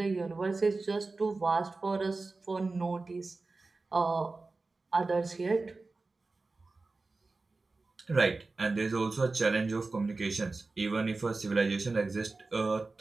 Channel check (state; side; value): quieter; left; 3.6 dB